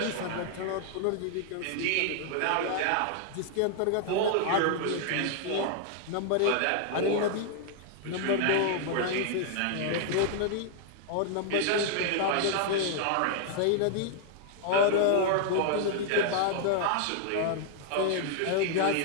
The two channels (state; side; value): different; both; correlation 0.00